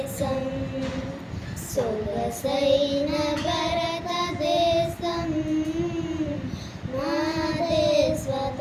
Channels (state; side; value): identical; both; correlation 1.00